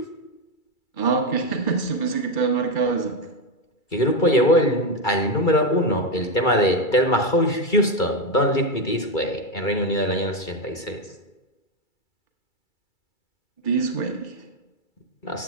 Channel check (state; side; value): late; right; 2.3 ms